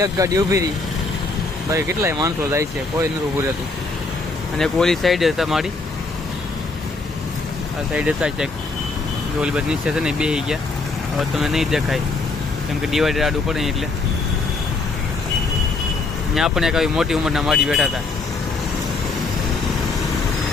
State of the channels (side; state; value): right; quieter; 3.8 dB